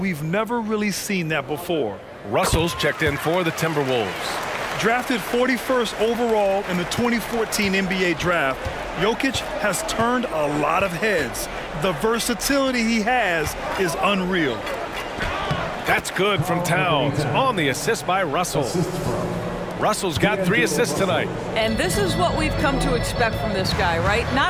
never really seen that before. Russell's checked in for the Timberwolves. Drafted 41st overall in the 2014 NBA draft, Jokic has turned a lot of heads. The versatility he has is unreal. That's good from Towns on the assist by Russell. Russell's got 3 assists tonight. And this is what we've come to expect from this guy, right?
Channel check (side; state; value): both; identical; correlation 1.00